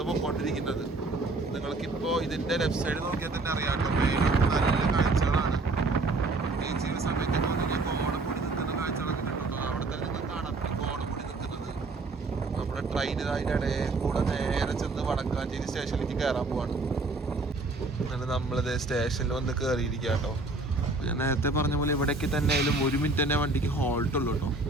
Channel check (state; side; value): quieter; left; 3.3 dB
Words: പോയിക്കൊണ്ടിരിക്കുന്നത്. നിങ്ങൾക്കിപ്പോൾ ഇതിൻ്റെ ലെഫ്റ്റ് സൈഡ് നോക്കിയാൽ തന്നെ അറിയാം കേട്ടോ. നല്ല കാഴ്ചകളാണ്. പ്രത്യേകിച്ച് ഈ സമയത്ത് കോടമുടി നിൽക്കുന്ന കാഴ്ചകളൊക്കെ കിട്ടും. അവിടെ തന്നെ നിങ്ങൾ കാണാം കോടമുടി നിൽക്കുന്നത്. നമ്മുടെ ട്രെയിൻ അതിൻ്റെ ഇടയിൽ കൂടെ നേരെ ചെന്ന് വടക്കാഞ്ചേരി സ്റ്റേഷനിലേക്ക് കയറാൻ പോവാണ്. അങ്ങനെ നമ്മളിത് സ്റ്റേഷനിൽ വന്ന് കയറിയിരിക്കുക കേട്ടോ. ഞാൻ നേരത്തെ പറഞ്ഞ പോലെ ഇവിടേക്ക് തന്നെ ആയാലും 1 മിനിറ്റ് തന്നെ വണ്ടിക്ക് ഹോൾട്ടുള്ളൂ കേട്ടോ.